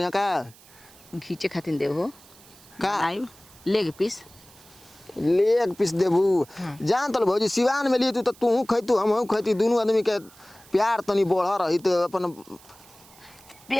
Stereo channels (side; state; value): right; noise; hiss, 24 dB below the sound